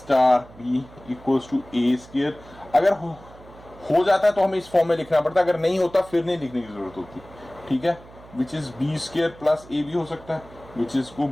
B equals to A square. अगर हो जाता है तो हमें इस फॉर्म में लिखना पड़ता है, अगर नहीं होता फिर नहीं लिखने की जरूरत होती। ठीक है, which is B square plus A भी हो सकता है, विच इज को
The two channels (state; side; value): noise; right; hum, 21 dB below the sound